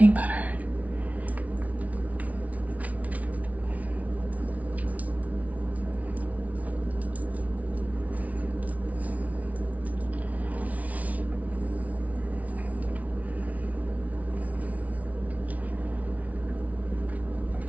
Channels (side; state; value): left; late; 0.070 ms